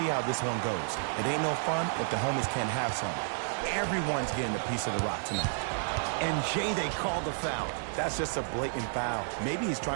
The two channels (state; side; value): silent; left; 57 dB below the other